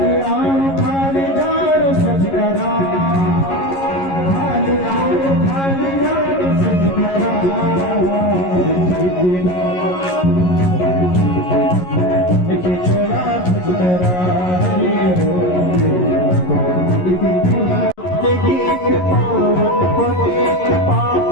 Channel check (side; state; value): right; late; 11 ms